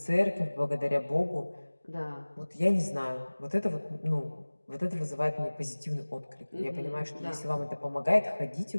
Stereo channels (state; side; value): inverted; both; correlation -1.00